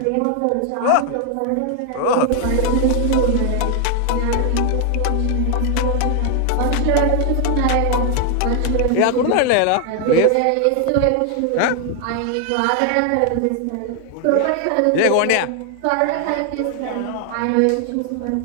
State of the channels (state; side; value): different; both; correlation 0.00